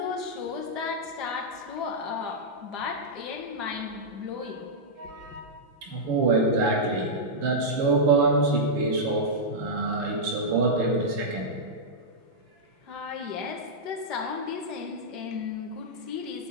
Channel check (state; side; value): late; left; 6.0 ms